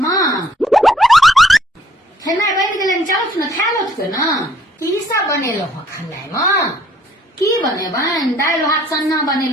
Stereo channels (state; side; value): normal; both; correlation 0.63